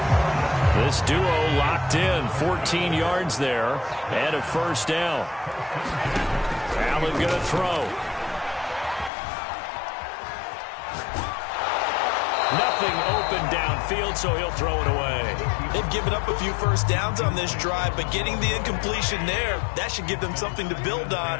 This duo locked in, 14 yards there, and a first down. Allen going to throw. Nothing open downfield, so he'll throw it away. They've given up a few first downs on this drive, but getting the incompletion there, that should give them something to build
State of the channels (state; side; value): drops out; right; at 9.1 s